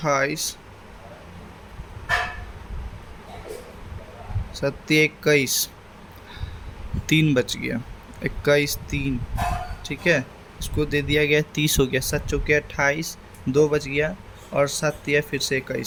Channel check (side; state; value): both; identical; correlation 1.00